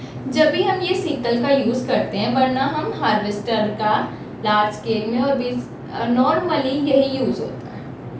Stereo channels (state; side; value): identical; both; correlation 1.00